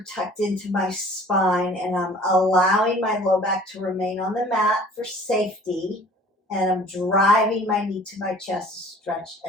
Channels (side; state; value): both; normal; correlation 0.49